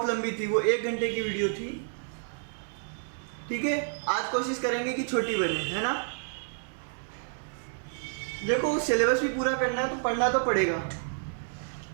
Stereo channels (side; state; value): left; silent; digital silence